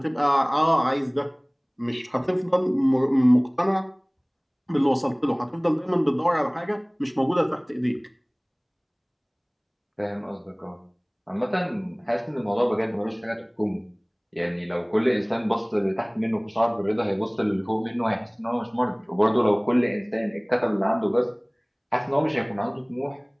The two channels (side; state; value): both; identical; correlation 1.00